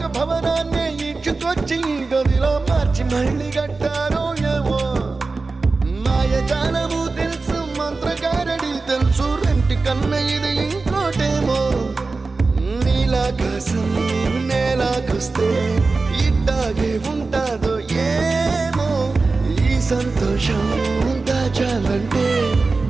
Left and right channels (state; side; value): quieter; left; 3.8 dB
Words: భవనాన్ని ఈడ్చుకొచ్చి గదిలో మార్చి మళ్ళీ కట్టారో ఏమో మాయజాలము తెలుసు మంత్రగారడి తెలుసు రెంటి కన్న ఇది ఇంకోటేమో నీలాకాశం నేలాకొస్తే ఇట్టాగే ఉంటాదో ఏమో ఈ సంతోషం దాచాలంటే